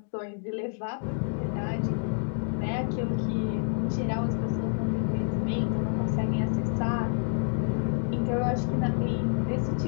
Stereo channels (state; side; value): silent; right; 59 dB below the other